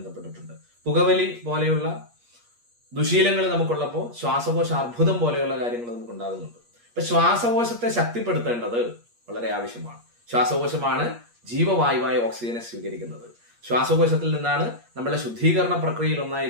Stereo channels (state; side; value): late; left; 8.5 ms